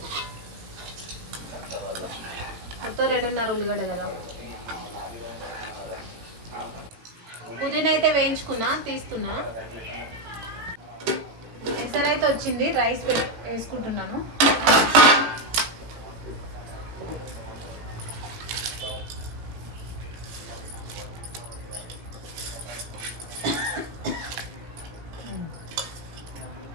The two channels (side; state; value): left; late; 17 ms